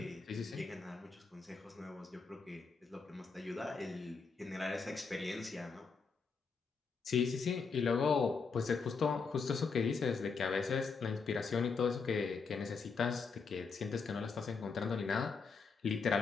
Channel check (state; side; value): quieter; right; 5.0 dB